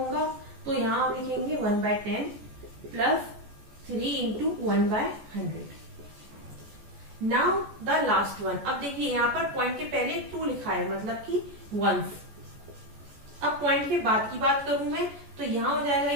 तो यहाँ हम लिखेंगे 1/10 plus 3 into 1/100। Now the last one. अब देखिए यहाँ पर पॉइंट के पहले 2 लिखा है मतलब कि वंस। अब पॉइंट के बाद की बात करूं मैं तो यहाँ हो जाएगा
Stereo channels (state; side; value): late; left; 14 ms